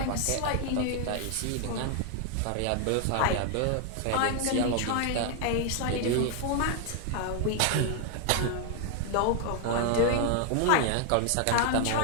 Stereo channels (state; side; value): different; both; correlation 0.00